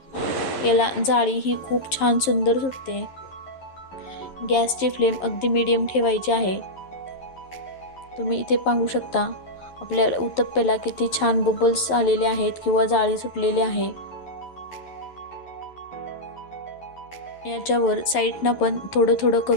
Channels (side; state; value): right; late; 11 ms